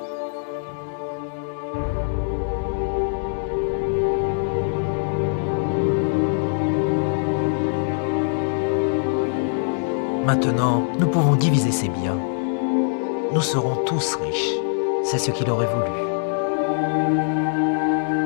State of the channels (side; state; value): right; silent; digital silence